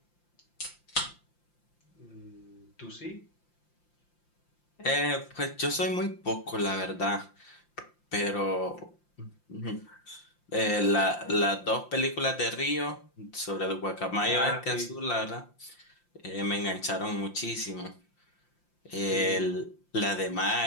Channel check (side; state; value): right; late; 5.8 ms